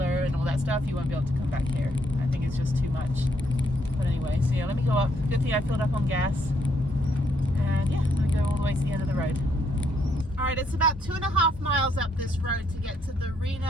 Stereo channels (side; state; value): both; normal; correlation 0.73